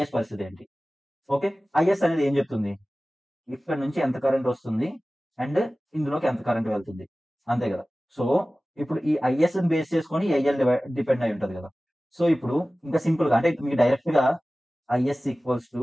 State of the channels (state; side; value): normal; both; correlation 0.97